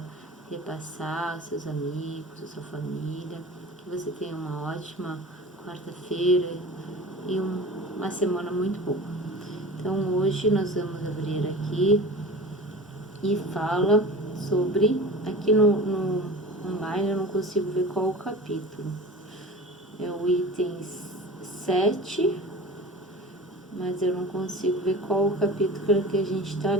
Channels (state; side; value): normal; both; correlation 0.37